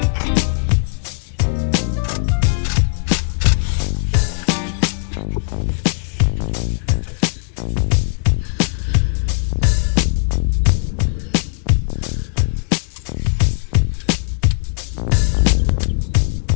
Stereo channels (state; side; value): silent; right; digital silence